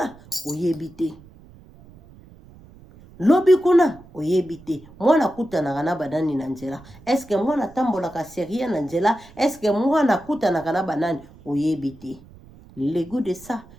oyebi te mwana kutanaka na banani na nzela eske mwana tambolaka serie na nzela eske mwana kutanaka na banani oyebi te le goût de ça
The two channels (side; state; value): right; noise; rumble, 23 dB below the sound